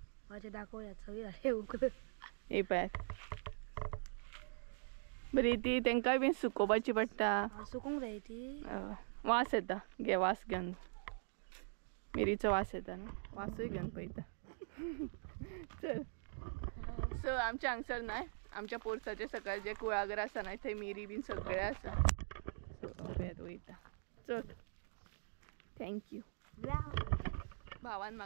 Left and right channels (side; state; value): left; silent; digital silence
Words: माझे दाखवूयात सगळी झाले उकळ. ही पॅथ बरी ती तेंकाय बी सुकोवपाची पडटा. सुकूंक जाय ती. वास येता घे वास घेवन. मिरीचो वास येता न्हू वासूय घेवन पळयता. चल सो आमच्या हांगसर नाय आमच्या पोरसाचे सकयल जे कुळागर आसा न्हय थंय मिरी बीन सगळे आसा. सो पळयत वयता. चल थँक्यू. भावान